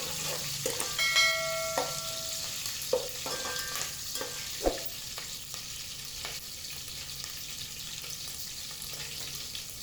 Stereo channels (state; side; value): noise; right; rumble, 14 dB below the sound